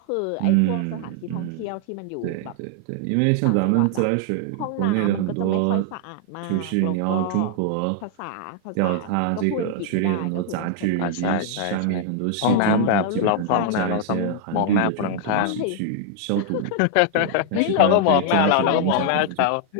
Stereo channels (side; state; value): both; different; correlation 0.00